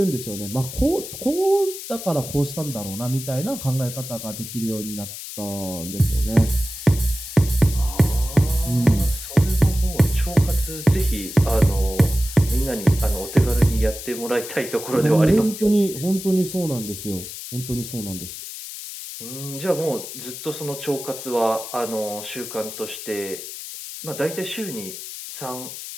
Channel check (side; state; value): left; noise; hiss, 10 dB below the sound